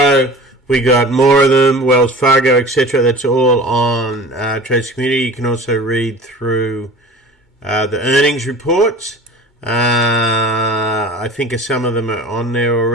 we got more of them, Wells Fargo, etc. That's all on Traders Community. You can also read through the earnings reports. I think some of them are on there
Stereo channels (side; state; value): both; normal; correlation 0.40